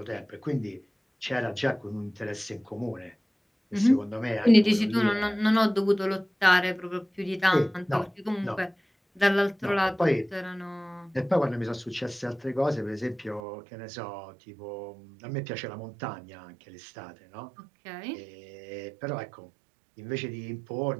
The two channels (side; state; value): left; drops out; at 13.4 s